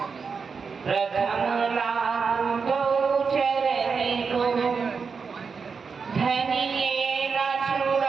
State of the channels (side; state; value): left; quieter; 5.4 dB